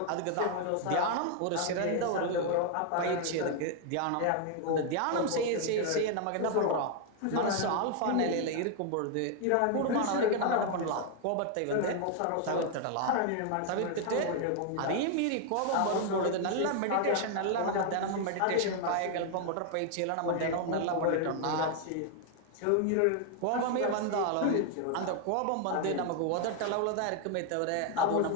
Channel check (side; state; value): both; different; correlation 0.00